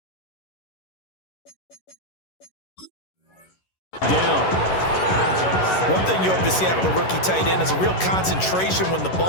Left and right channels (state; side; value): late; right; 11 ms